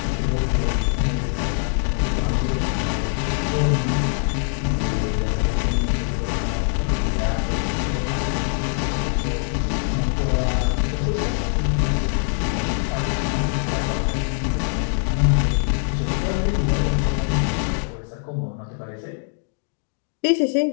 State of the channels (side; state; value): right; silent; digital silence